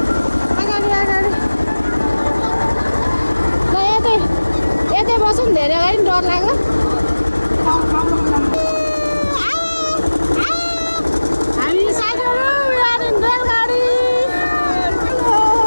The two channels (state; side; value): inverted; both; correlation -1.00